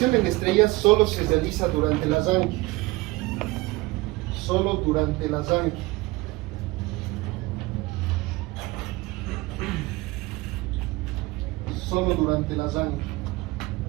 en estrella solo se realiza durante el arranque. Solo durante el arranque. Solo durante el arranque.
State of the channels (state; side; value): quieter; left; 21.7 dB